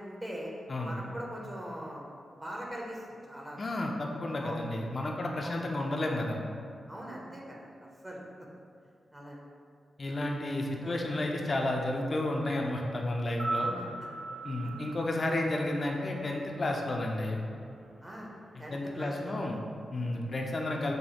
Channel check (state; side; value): normal; both; correlation 0.89